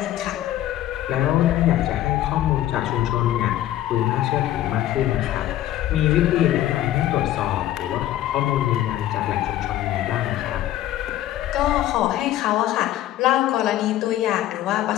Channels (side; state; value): right; quieter; 13.2 dB